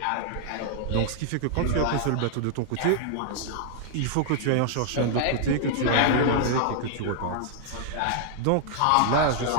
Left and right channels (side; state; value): both; different; correlation -0.01